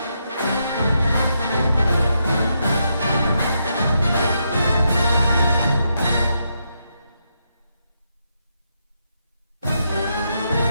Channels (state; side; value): inverted; both; correlation -0.81